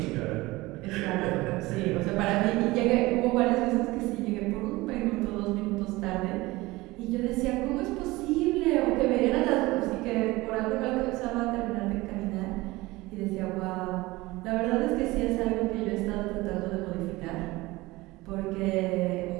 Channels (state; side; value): quieter; left; 20.5 dB